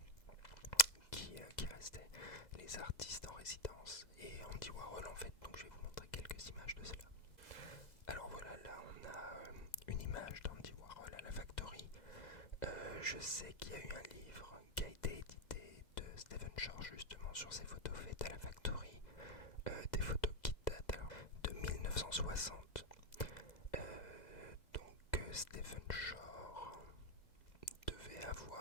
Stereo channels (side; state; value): right; late; 2.0 ms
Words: restaient, les artistes en résidence, et Andy Warhol en fait. Donc je vais vous montrer quelques images de cela. Alors voilà, là on a une image d'Andy Warhol à la factory. Je sais qu'il y a eu un livre qui a été édité de Stephen Shore justement sur ces photos faites à la factory, des photos qui datent alors de 1960. Donc Stephen Shore devait